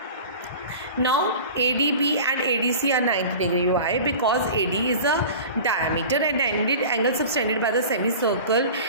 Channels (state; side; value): inverted; both; correlation -0.37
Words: Now ADB and ADC are 90 degree. Why? Because AD is a diameter and angle subtended by the semicircle